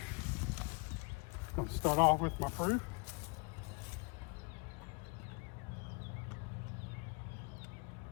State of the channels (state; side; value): quieter; right; 31.7 dB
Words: I'll start off with my proof.